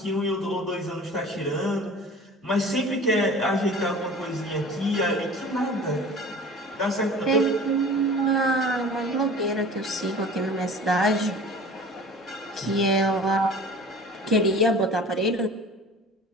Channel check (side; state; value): both; normal; correlation 0.41